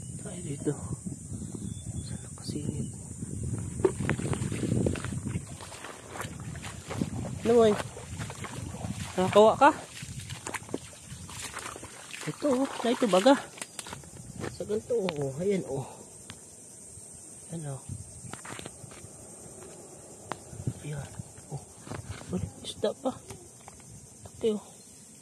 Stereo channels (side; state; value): both; identical; correlation 1.00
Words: Tayo dito. Saan nakasingit? Ano boy? Nakakawa ka? Ito oh, na ito baga. Sa ganito oh, ayan oh. Ayan oh. Ayan oh. Uy, isda pa. Taki oh.